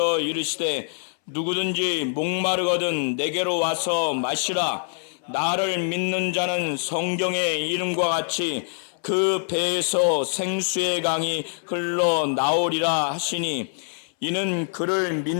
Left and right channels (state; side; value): silent; right; 61 dB below the other